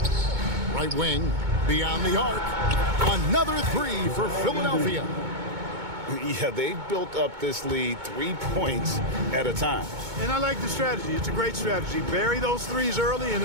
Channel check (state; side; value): late; left; 2.2 ms